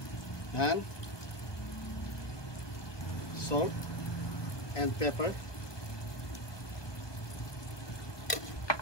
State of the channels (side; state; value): right; late; 1.2 ms